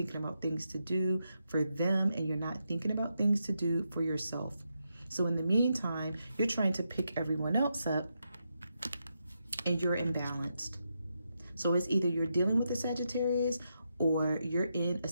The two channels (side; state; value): both; inverted; correlation -0.83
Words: about things to do for them, and you're not thinking about things to do for yourself. So in the meantime, you're trying to pick everyone else up, and you're imbalanced. So it's either you're dealing with a Sagittarius, or you're in a